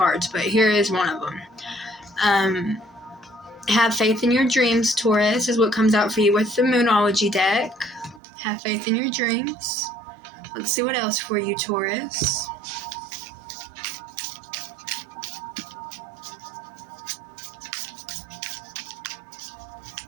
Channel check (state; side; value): drops out; left; at 8.2 s